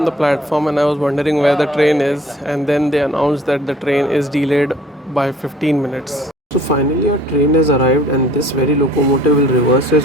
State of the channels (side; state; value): both; normal; correlation 0.53